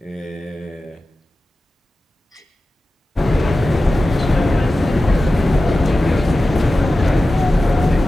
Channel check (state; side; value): normal; both; correlation 0.94